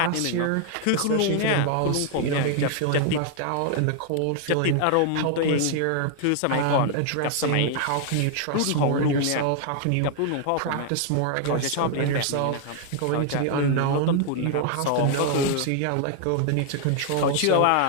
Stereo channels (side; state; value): both; different; correlation 0.00